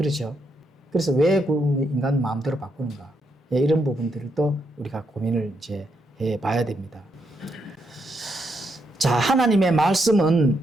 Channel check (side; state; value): both; normal; correlation 0.79